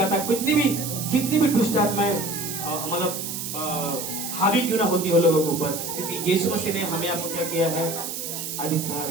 है। कितनी भी दुष्ट आत्माएं मतलब हावी क्यों ना होती हो लोगों के ऊपर, क्योंकि यीशु मसीह ने हमें आपको क्या किया है? अधिकार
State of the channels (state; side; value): noise; right; hiss, 6 dB below the sound